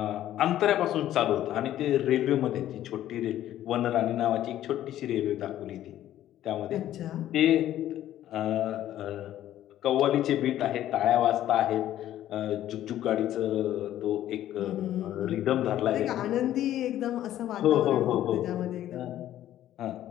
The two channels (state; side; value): quieter; right; 12.6 dB